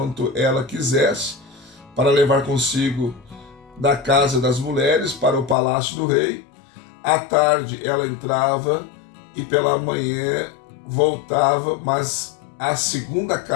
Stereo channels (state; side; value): drops out; right; at 5.6 s